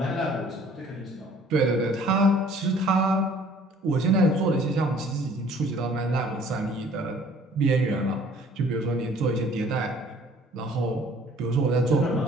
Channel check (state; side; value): normal; both; correlation 0.55